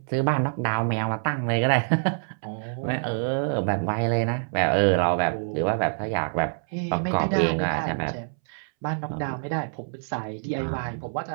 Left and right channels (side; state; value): left; silent; 61 dB below the other